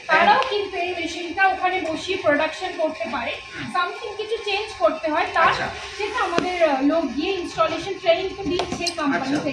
তারাও কিন্তু এই মেশিনটা ওখানে বসিয়ে প্রোডাকশন করতে পারে। সামথিং কিছু চেঞ্জ করতে হয় তার, সেটা আমাদের লোক গিয়ে ইনস্টলেশন ট্রেনিং তো দিচ্ছে কোম্পানি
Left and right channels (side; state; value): both; identical; correlation 1.00